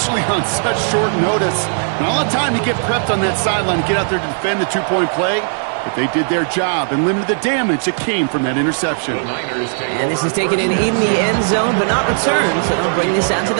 on such short notice. Not a lot of time to get prepped on that sideline to get out there to defend the 2-point play, but they did their job and limited the damage that came from that interception. And this is taken in the end zone, but not returned, so they'll bring this out to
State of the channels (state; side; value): silent; left; digital silence